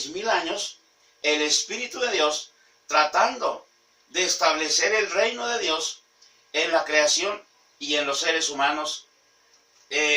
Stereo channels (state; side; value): identical; both; correlation 1.00